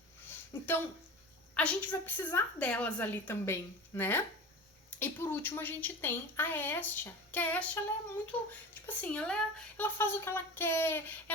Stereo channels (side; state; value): both; normal; correlation 0.32